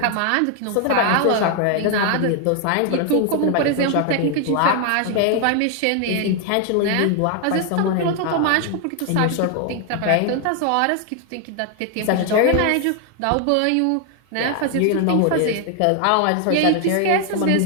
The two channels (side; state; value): both; different; correlation 0.00